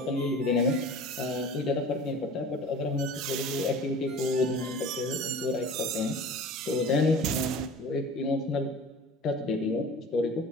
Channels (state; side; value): normal; both; correlation 0.40